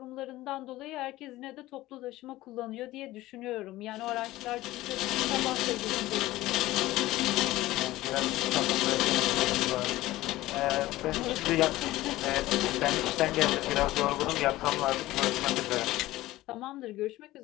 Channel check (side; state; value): right; quieter; 17.0 dB